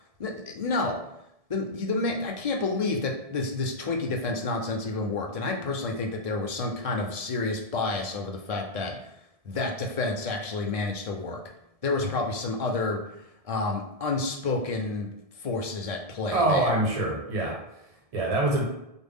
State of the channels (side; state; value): left; late; 1.7 ms